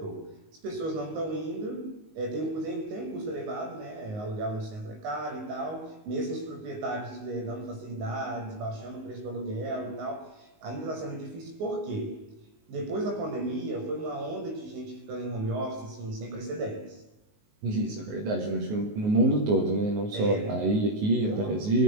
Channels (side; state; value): left; late; 19 ms